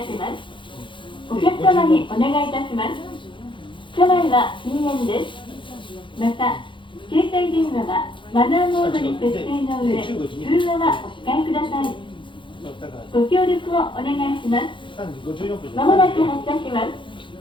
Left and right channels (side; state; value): right; late; 0.24 ms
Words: ます。お客様にお願いいたします。車内は禁煙です。また携帯電話はマナーモードに設定の上、通話はお控えください。ご協力をお願いします。まもなく発車します。